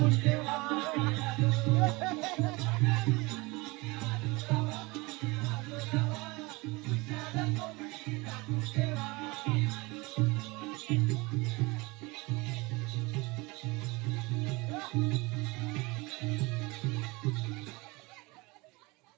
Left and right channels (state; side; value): quieter; left; 24.6 dB